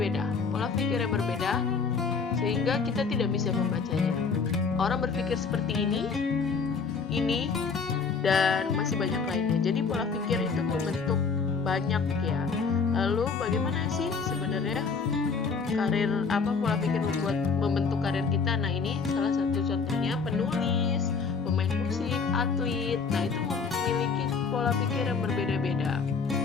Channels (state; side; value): quieter; right; 5.1 dB